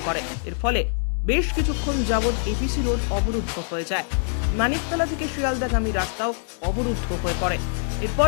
করে। এর ফলে বেশ কিছুক্ষণ যাবৎ এপিসি রোড অবরুদ্ধ হয়ে যায়। মানিকতলা থেকে শিয়ালদাগামী রাস্তাও অবরুদ্ধ হয়ে পড়ে।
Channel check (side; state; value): right; silent; digital silence